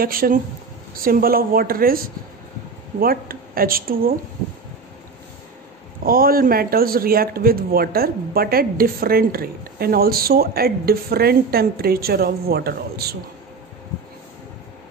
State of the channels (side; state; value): left; quieter; 4.4 dB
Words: Symbol of water is what? H2O. All metals react with water but at different rate and also at different temperature of water also.